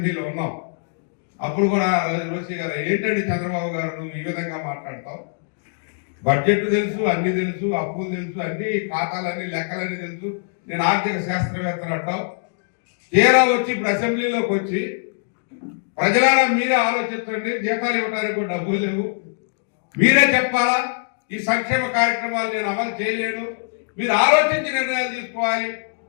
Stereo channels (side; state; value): right; silent; digital silence